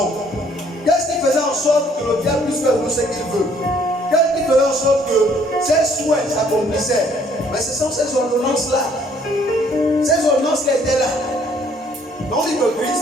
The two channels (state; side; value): normal; both; correlation 0.62